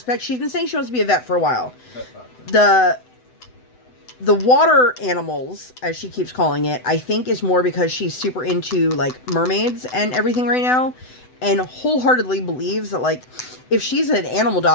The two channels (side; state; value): right; late; 7.9 ms